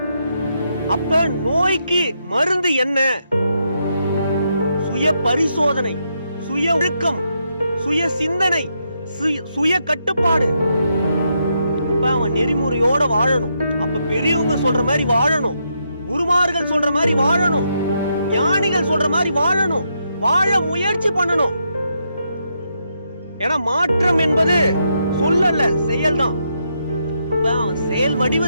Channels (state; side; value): inverted; both; correlation -0.80